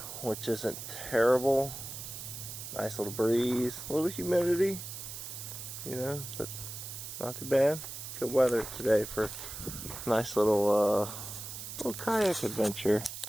which isn't terrible. Nice little breeze, a little humidity, you know, but not too bad. Good weather today for a nice little kayak adventure.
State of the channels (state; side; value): noise; right; hiss, 9 dB below the sound